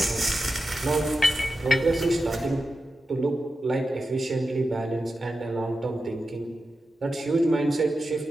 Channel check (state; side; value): normal; both; correlation 0.90